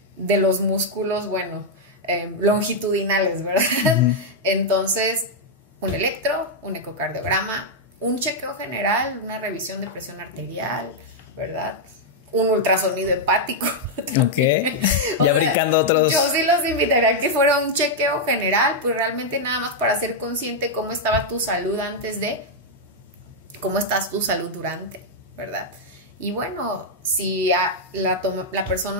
de los músculos, longitudinales, ¿verdad? Entonces, un electro, un ecocardiograma, un chequeo general, una revisión de presión arterial, ¿verdad? Un ultrasonido hepático. Ok. Ya brincando otros. Yo sí los invitaría a que fuera un chequeo general, pues realmente nada más para ser consciente cómo estaba tu salud antes de, cómo estás tu salud durante, ¿verdad? Y bueno, si la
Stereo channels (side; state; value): both; normal; correlation -0.03